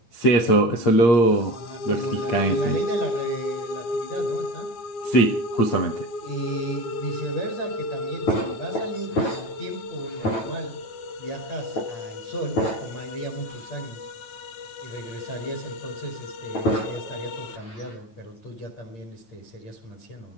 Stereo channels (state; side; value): late; right; 8.5 ms